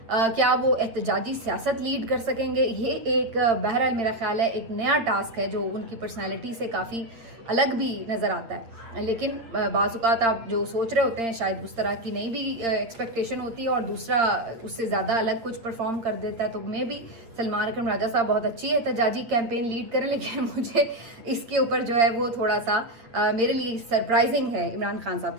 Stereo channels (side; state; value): left; late; 8.8 ms